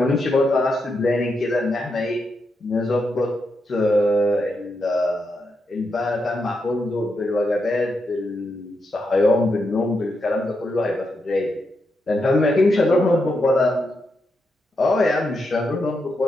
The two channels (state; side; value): normal; both; correlation 0.84